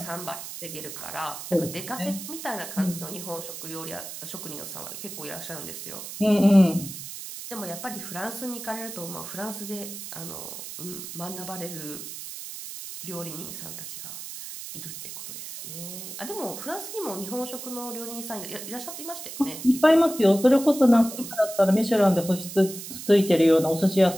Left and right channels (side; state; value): right; noise; hiss, 10 dB below the sound